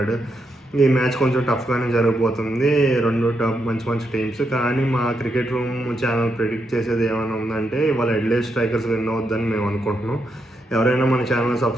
ఈ మ్యాచ్ కొంచెం టఫ్గానే జరగబోతుంది. రెండు మంచి మంచి టీమ్స్. కానీ మా క్రికెట్ రూమ్ ఛానల్ ప్రిడిక్ట్ చేసేది ఏమైనా ఉందంటే ఇవాళ అడిలైడ్ స్ట్రైకర్స్ విన్ అవుద్దని మేము అనుకుంటున్నాం. ఎవరైనా మన ఛానల్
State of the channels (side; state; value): both; normal; correlation 0.82